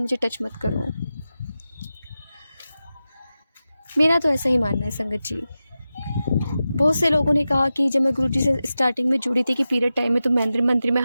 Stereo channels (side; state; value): both; inverted; correlation -0.93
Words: टच मत करो। मेरा तो ऐसा ही मानना है संगत जी। बहुत से लोगों ने कहा कि जब मैं गुरुजी से स्टार्टिंग में जुड़ी थी कि पीरियड टाइम में तो मंदिर में